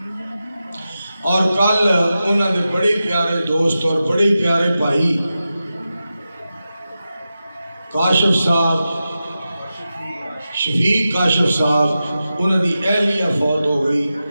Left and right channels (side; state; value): both; inverted; correlation -0.92